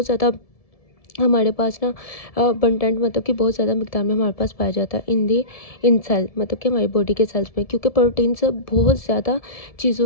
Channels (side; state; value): right; late; 1.7 ms